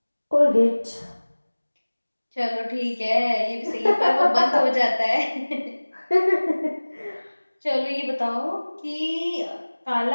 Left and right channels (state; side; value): inverted; both; correlation -1.00